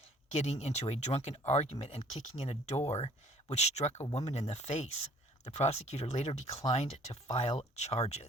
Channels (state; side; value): normal; both; correlation 0.56